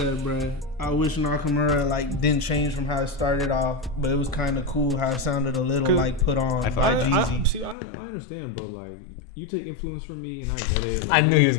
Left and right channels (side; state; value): right; drops out; at 7.8 s